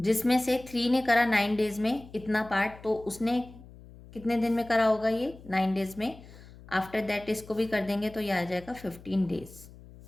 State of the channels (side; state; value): left; noise; hum, 20 dB below the sound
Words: से 3 ने करा 9 days में इतना पार्ट, तो उसने कितने दिन में करा होगा ये 9 days में। आफ्टर दैट इसको भी कर देंगे तो ये आ जाएगा 15 days,